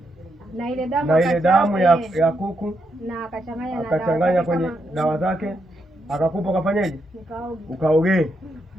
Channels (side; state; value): both; normal; correlation 0.81